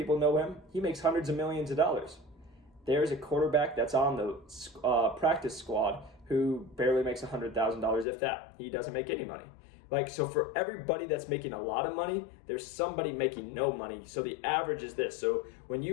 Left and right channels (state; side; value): drops out; right; at 8.1 s